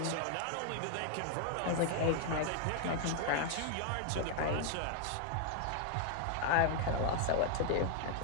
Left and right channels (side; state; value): both; different; correlation 0.00